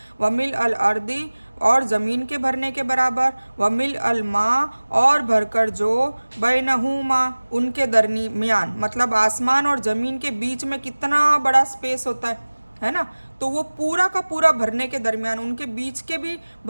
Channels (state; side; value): inverted; both; correlation -1.00